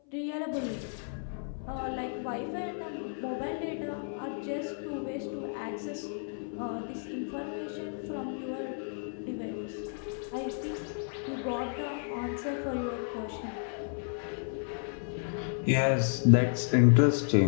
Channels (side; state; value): right; silent; 56 dB below the other